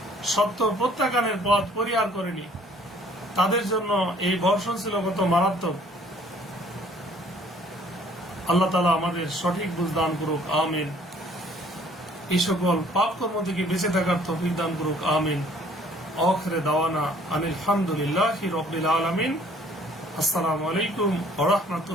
সত্য প্রত্যাখ্যানের পথ পরিহার করেনি। তাদের জন্য এই বর্ষণ ছিল কত মারাত্মক। আল্লাহ তাআলা আমাদের সঠিক বুঝ দান করুক, আমিন। এই সকল পাপ কর্ম থেকে বেঁচে থাকার তৌফিক দান করুক, আমিন। আখিরে দাওয়ানা আনিল হামদুলিল্লাহি রাব্বিল আলামিন। আসসালামু আলাইকুম ওয়া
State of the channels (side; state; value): both; normal; correlation 0.58